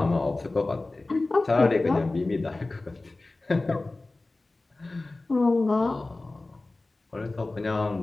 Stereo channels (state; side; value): quieter; right; 3.1 dB